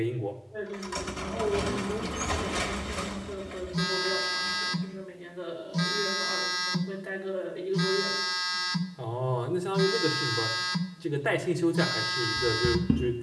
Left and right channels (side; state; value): both; identical; correlation 1.00